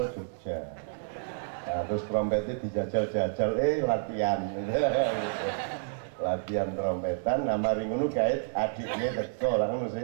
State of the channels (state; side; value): silent; left; digital silence